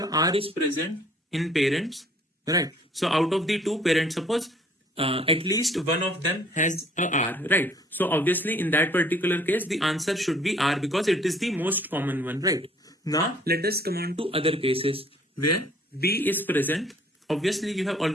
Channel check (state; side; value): normal; both; correlation 0.58